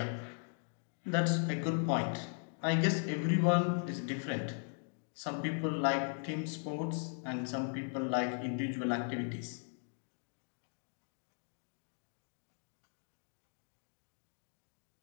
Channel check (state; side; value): silent; right; 52 dB below the other